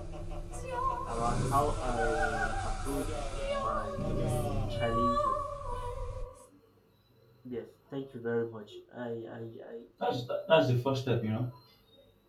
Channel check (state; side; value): identical; both; correlation 1.00